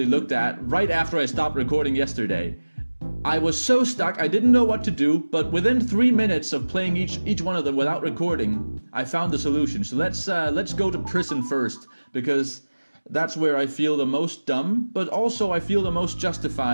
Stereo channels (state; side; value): inverted; both; correlation -1.00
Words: looked at right after I stopped recording yesterday. I was so stuck, I didn't know what to do, but within 3 minutes of playing each one of them without recording, I found the solution. So let's go to prison first, because that's where I feel the most dumb, but also I feel the most